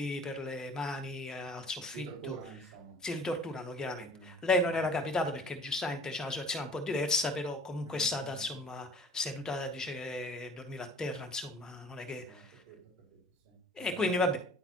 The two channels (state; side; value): normal; both; correlation 0.49